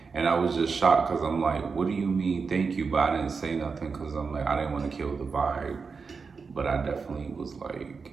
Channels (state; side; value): quieter; left; 5.1 dB